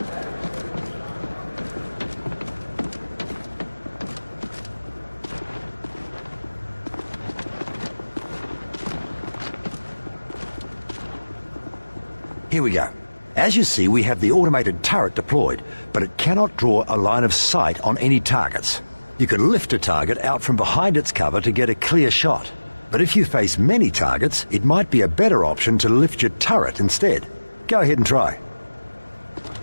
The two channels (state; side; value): inverted; both; correlation -1.00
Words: Here we go. As you see, we have the automated turret deployed, but it cannot draw a line of sight on any targets. You can lift a target out from behind its cover to get a clear shot. But if you face many targets, it might be a better option to lift your turret instead. Go ahead and try.